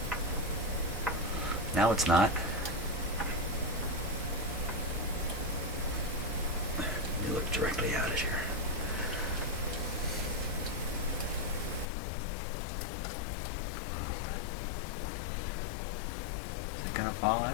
Now it's not. Let me look directly at it here. Is it going to fall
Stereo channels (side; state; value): right; drops out; at 11.9 s